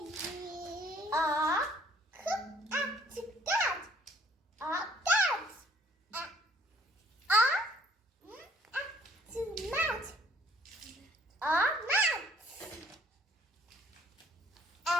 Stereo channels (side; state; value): both; normal; correlation 0.60